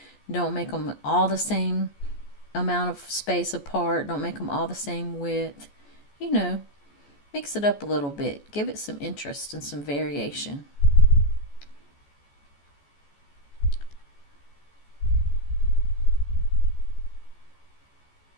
don't make them all the same amount of space apart. Don't make them all the same width. Mix it up a little bit. Give it some interest and some variation.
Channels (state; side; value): late; right; 14 ms